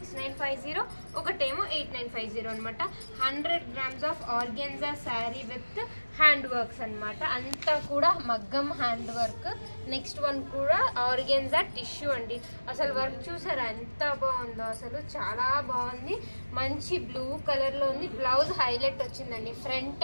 ఒకటేమో 8950 అనమాట. 100 grams of organza sari with hand works అనమాట. అంతా కూడా మగ్గం హ్యాండ్ వర్క్. నెక్స్ట్ వన్ కూడా ఆర్గెన్జా టిష్యూ అండి. అసలు వర్క్ చూసారా ఎంత బాగుందో, అసలు చాలా బాగుంది. మంచి బ్లూ కలర్ లో ఉంది. బ్లౌజ్ హైలైట్ వచ్చిందండి. ఫ్రంట్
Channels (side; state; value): both; inverted; correlation -1.00